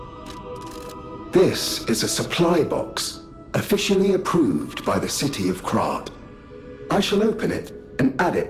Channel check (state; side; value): identical; both; correlation 1.00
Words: This is a supply box, officially approved by the city of Krat. I shall open it and add it